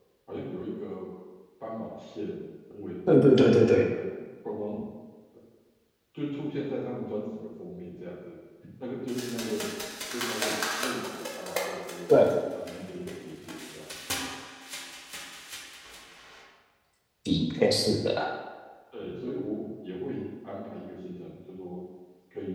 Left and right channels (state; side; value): identical; both; correlation 1.00